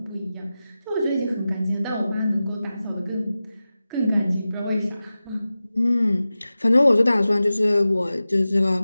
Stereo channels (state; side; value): inverted; both; correlation -0.95